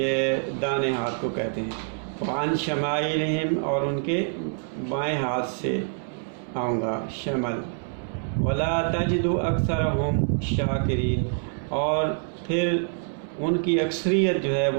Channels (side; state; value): left; silent; 61 dB below the other